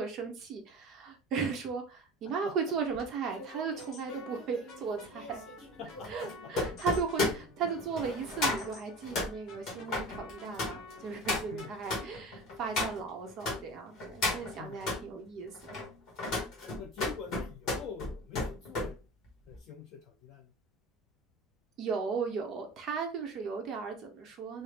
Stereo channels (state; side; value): normal; both; correlation 0.35